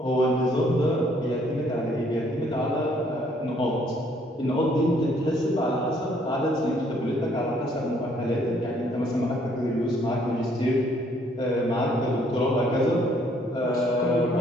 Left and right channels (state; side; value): normal; both; correlation 0.65